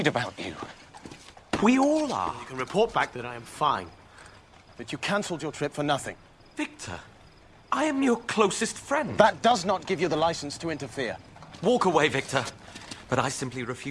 about you. We all are. You can report back that I am fine. That you cancelled your trip for nothing. Victor, I am your closest friend. That does not give you the license to interfere. Walk away, Victor. But I simply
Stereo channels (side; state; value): both; identical; correlation 1.00